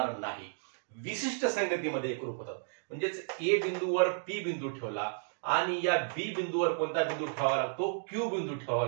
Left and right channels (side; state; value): left; silent; digital silence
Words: नाही। विशिष्ट संगतीमध्ये एकरूप होतात। म्हणजेच ए बिंदूवर पी बिंदू ठेवला आणि या बी बिंदूवर कोणता बिंदू ठेवावा लागतो, क्यू बिंदू ठेवावा